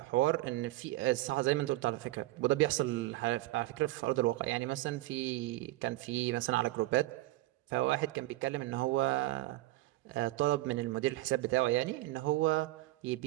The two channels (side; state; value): left; quieter; 18.0 dB